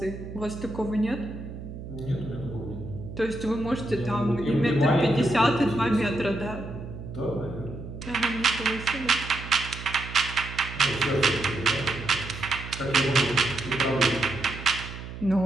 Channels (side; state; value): right; noise; hum, 11 dB below the sound